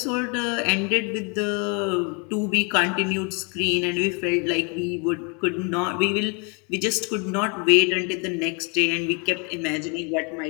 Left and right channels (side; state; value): right; quieter; 33.9 dB